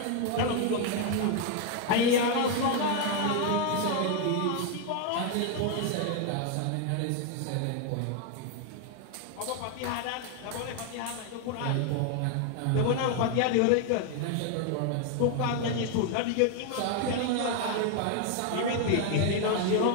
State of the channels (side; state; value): both; different; correlation 0.01